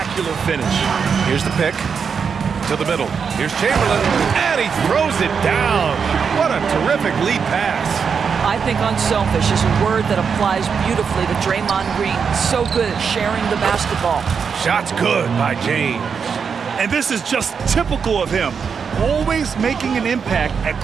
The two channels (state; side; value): quieter; left; 6.2 dB